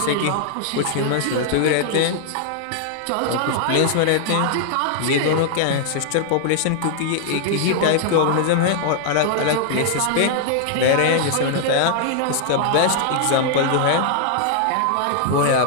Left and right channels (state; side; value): different; both; correlation -0.01